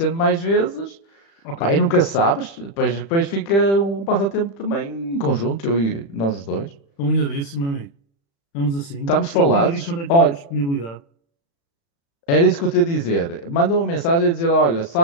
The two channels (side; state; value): right; late; 35 ms